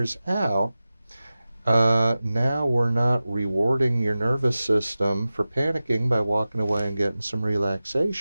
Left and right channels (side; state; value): both; inverted; correlation -0.95